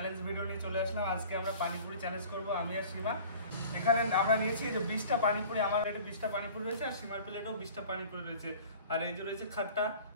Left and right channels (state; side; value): inverted; both; correlation -0.44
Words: ভিডিও নিয়ে চলে আসলাম। আজকে আমরা পানিপুরি চ্যালেঞ্জ করব, আমি আর সীমা। এখানে আমরা নিয়েছি যে 20টা পানিপুরি, আমার প্লেটে 20টা পানিপুরি রয়েছে আর সীমার প্লেটেও 20টা পানিপুরি রয়েছে। আর এই যে রয়েছে খাট্টা,